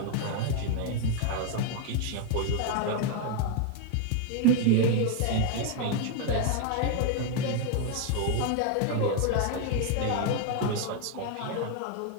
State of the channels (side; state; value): both; different; correlation 0.01